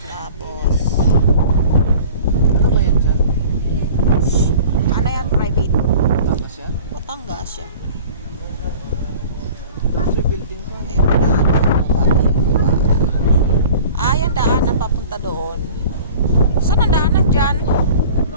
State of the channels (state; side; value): inverted; both; correlation -0.43